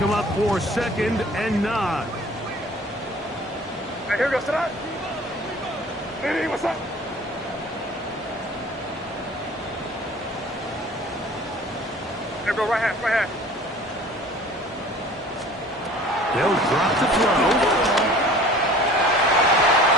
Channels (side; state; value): both; normal; correlation 0.47